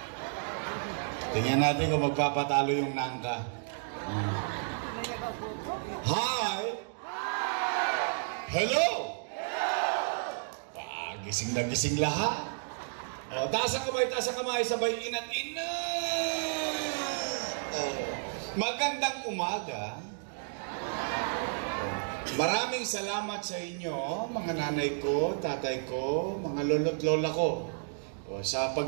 Tingnan natin kung magpapatalo yung nangka. Hi. Hello. Gising na gising lahat. Taas ang kamay, sabay inat-inat. Magandang umaga. Maraming salamat sa inyo, mga nanay ko, tatay ko, mga lolo't lola ko, sa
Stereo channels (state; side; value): silent; left; digital silence